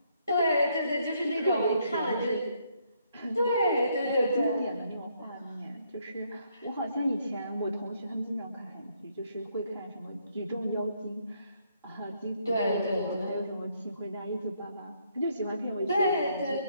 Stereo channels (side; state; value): both; inverted; correlation -0.72